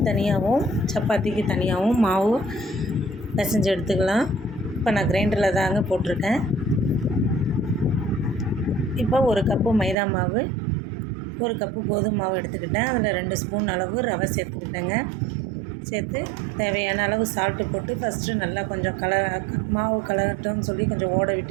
தனியாகவும் சப்பாத்திக்கு தனியாகவும் மாவு பிசைஞ்சு எடுத்துக்கலாம். இப்போ நான் கிரைண்டரில் தாங்க போட்டிருக்கேன். இப்போ 1 கப்பு மைதா மாவு, 1 கப்பு கோதுமை மாவு எடுத்துக்கிட்டேன். அதில் 2 ஸ்பூன் அளவு ரவை சேர்த்துக்கிட்டேங்க. சேர்த்து தேவையான அளவு சால்ட்டு போட்டு ஃபஸ்ட்டு நல்லா கொஞ்சம் மாவு கலரட்டோன்னு சொல்லி கொஞ்சம் ஓட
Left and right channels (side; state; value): left; drops out; at 10.0 s